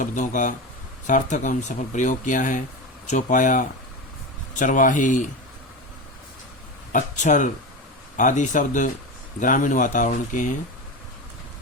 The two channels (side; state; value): both; normal; correlation 0.22